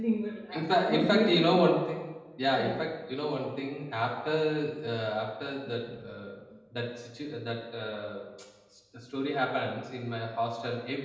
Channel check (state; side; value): identical; both; correlation 1.00